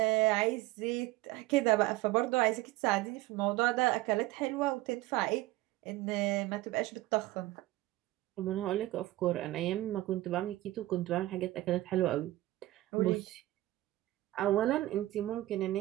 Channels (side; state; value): left; quieter; 17.3 dB